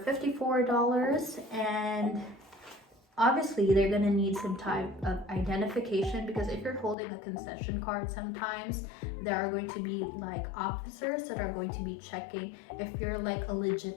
and obviously they're gonna need some type of identification, because if you're holding a concession card, sometimes there are going to be like officers that are going to be checking if you're like a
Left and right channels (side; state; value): right; drops out; at 7.0 s